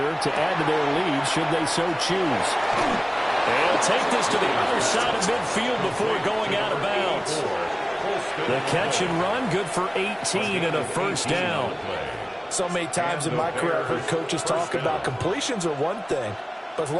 to add to their lead should they so choose. They'll take this to the other side of midfield before going out of bounds. The catch and run good for 18 and a 1st down. So many times in my career I've heard coaches talk about completions are one thing, but as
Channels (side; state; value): both; identical; correlation 1.00